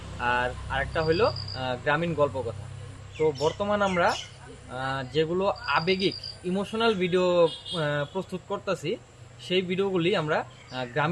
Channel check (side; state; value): both; identical; correlation 1.00